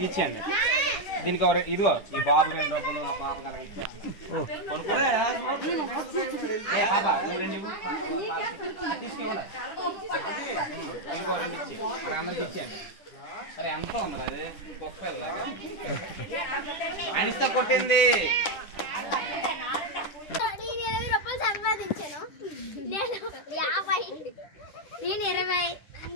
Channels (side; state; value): right; late; 10 ms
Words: ఇచ్చేయండి. దీనికి ఇదిగో ఈ బాబు 2 రూపాయలు, ఆ పాప తీసుకోండి. ఇదిగో 2 ఇచ్చి అక్కడ అందరికి ఇచ్చేయండి. అరే ఎంత ఉంది అది కుక్కలాగా అనిస్తా కొట్టింది. సంపాదించాను నేను 50, నేను 20,